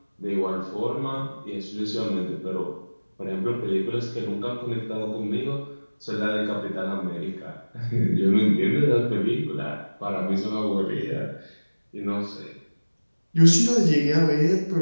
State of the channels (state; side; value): inverted; both; correlation -1.00